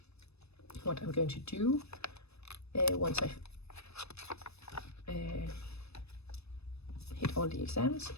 what I'm going to do once I hit all the exams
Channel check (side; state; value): right; late; 0.79 ms